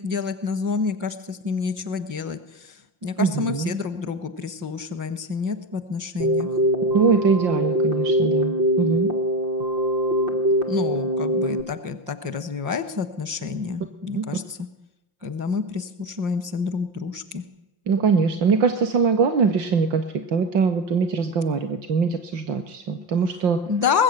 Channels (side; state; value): left; late; 5.7 ms